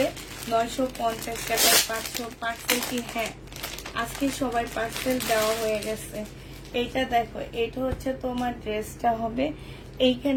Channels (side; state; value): both; identical; correlation 1.00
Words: 950 টাকা। 500 পার্সেল কি? হ্যাঁ আজকে সবাই পার্সেল দেওয়া হয়ে গেছে। এইটা দেখো, এটা হচ্ছে তোমার ড্রেসটা হবে।